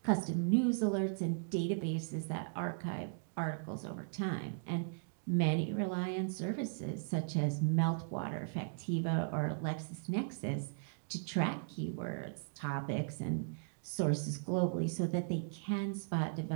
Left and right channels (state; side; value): silent; left; digital silence